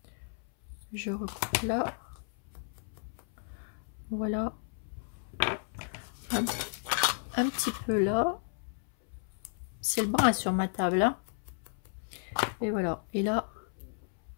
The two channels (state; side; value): silent; right; 56 dB below the other